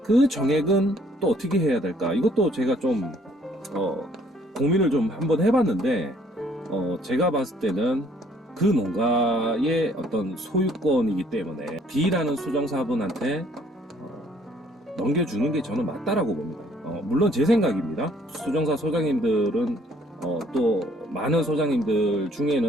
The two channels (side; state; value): both; normal; correlation 0.62